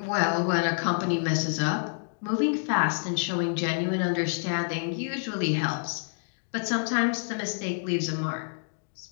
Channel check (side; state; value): right; silent; digital silence